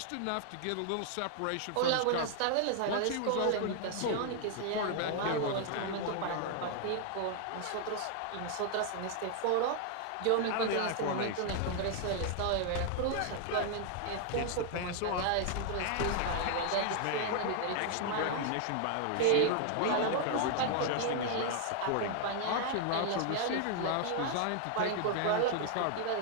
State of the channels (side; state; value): both; different; correlation 0.00